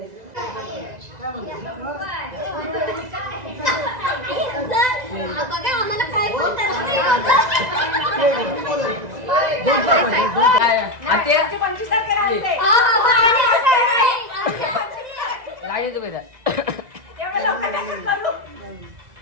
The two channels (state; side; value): late; left; 2.0 ms